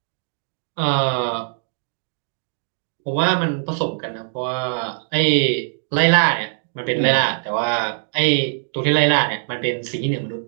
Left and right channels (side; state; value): left; silent; digital silence